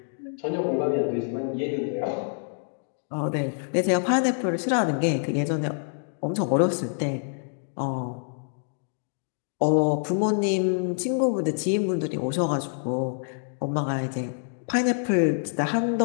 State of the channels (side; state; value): right; silent; digital silence